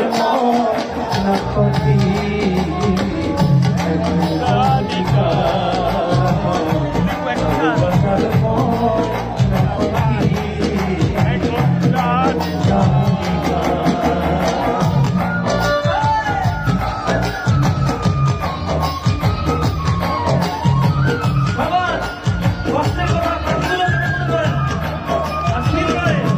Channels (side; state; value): both; identical; correlation 1.00